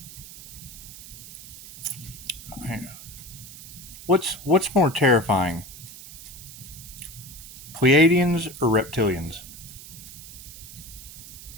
What's more terrifying? Pleiadians or reptilians?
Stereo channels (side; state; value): right; noise; hiss, 15 dB below the sound